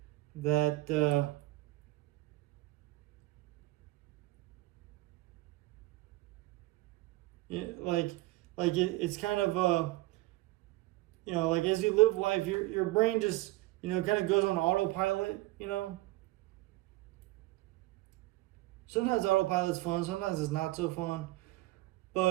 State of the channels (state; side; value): quieter; left; 19.3 dB